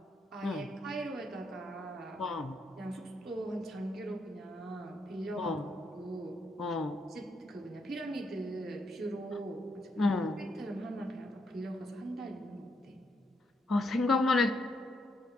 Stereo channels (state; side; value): normal; both; correlation 0.77